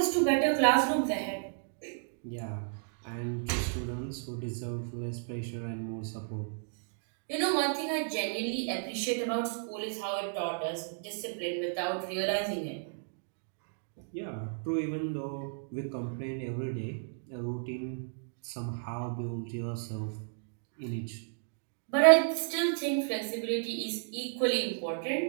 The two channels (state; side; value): silent; left; digital silence